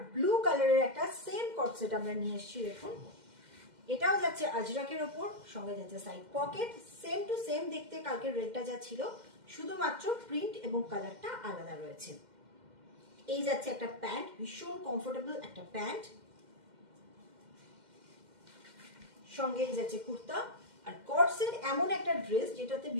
ব্লু কালারের একটা সেম কর্ডসেট আমরা নিয়ে এসেছি। দেখুন, এটাও যাচ্ছে আজরাকের ওপর, সঙ্গে যাচ্ছে side pocket, same to same দেখতে কালকে রেডটা যা ছিল, শুধুমাত্র প্রিন্ট এবং কালারটা আলাদা রয়েছে। এই যাচ্ছে একটা প্যান্ট, ভীষণ কমফোর্টেবল একটা প্যান্ট, সঙ্গে এই যাচ্ছে কুর্তা। আর কর্ডসেট এমন একটা ড্রেস যেটাতে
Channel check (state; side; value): late; left; 2.1 ms